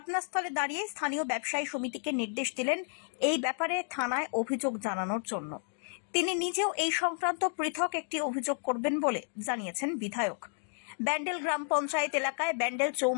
দাঁড়িয়ে স্থানীয় ব্যবসায়ী সমিতিকে নির্দেশ দিলেন এই ব্যাপারে থানায় অভিযোগ জানানোর জন্য। তিনি নিজেও এই সংক্রান্ত পৃথক একটি অভিযোগ করবেন বলে জানিয়েছেন বিধায়ক। ব্যান্ডেল গ্রাম পঞ্চায়েত এলাকায় ব্যান্ডেল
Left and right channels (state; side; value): silent; right; 57 dB below the other